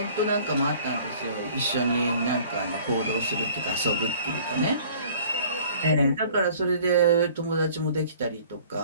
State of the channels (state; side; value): inverted; both; correlation -0.52